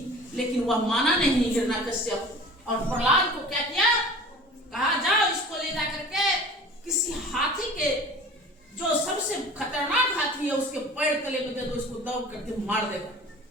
लेकिन वह माना नहीं हिरण्यकश्यप। और प्रहलाद को क्या किया? कहा जाओ इसको ले जा करके किसी हाथी के, जो सबसे खतरनाक हाथी है, उसके पैर तले में दे दो, इसको दौड़ करके मार देगा।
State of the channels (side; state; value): both; normal; correlation 0.42